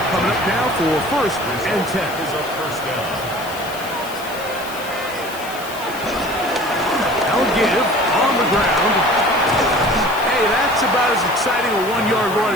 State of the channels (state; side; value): noise; left; hiss, 15 dB below the sound